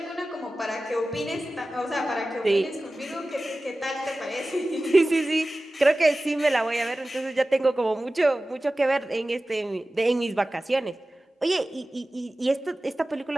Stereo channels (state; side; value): normal; both; correlation 0.96